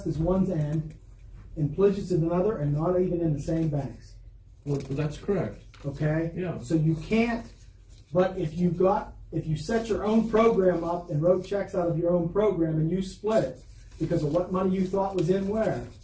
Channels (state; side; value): identical; both; correlation 1.00